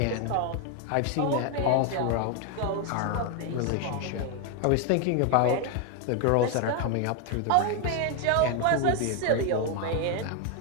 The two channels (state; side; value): different; both; correlation 0.01